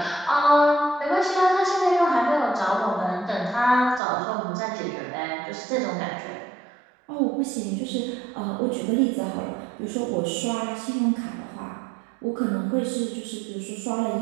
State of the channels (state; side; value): drops out; left; at 4.0 s